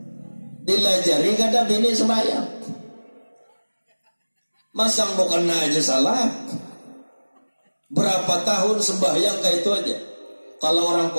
Dilajari kada bini sembahyang. Masang mukena aja salah. Berapa tahun sembahyang kayak itu aja. Kalau orang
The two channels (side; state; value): both; inverted; correlation -1.00